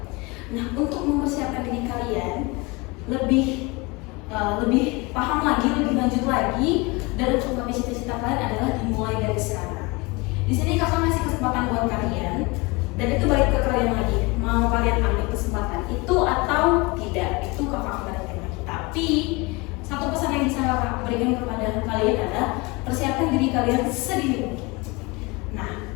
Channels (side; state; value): right; quieter; 25.4 dB